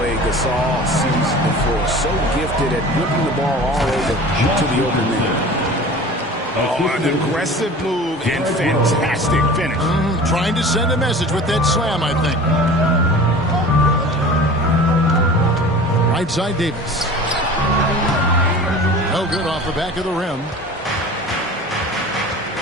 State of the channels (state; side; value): normal; both; correlation 0.39